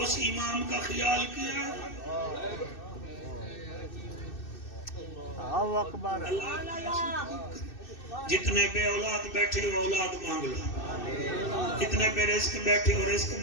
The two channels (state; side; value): late; right; 2.6 ms